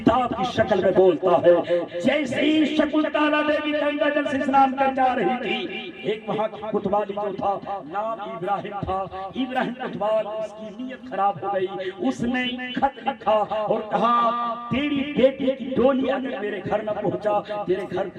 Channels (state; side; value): identical; both; correlation 1.00